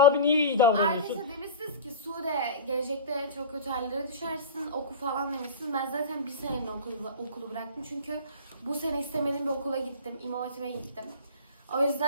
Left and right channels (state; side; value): inverted; both; correlation -0.33